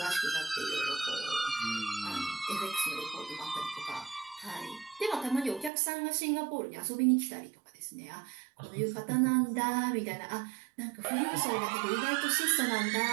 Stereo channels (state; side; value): drops out; left; at 5.7 s